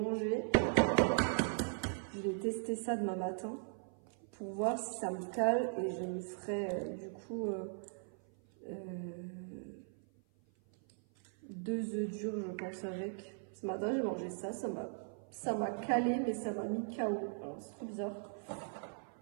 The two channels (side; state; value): left; silent; 52 dB below the other